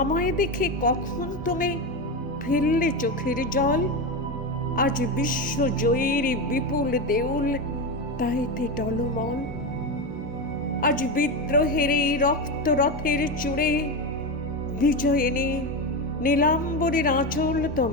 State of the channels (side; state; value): both; normal; correlation 0.15